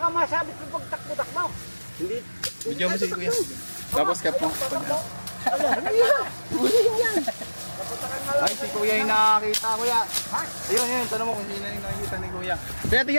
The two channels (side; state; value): both; inverted; correlation -1.00